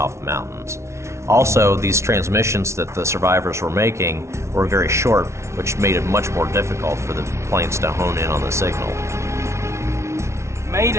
the mountains. Also, these transmissions that the survivors were making were very short, which made it much more difficult for the planes to hone in on the signal.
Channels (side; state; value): left; late; 0.13 ms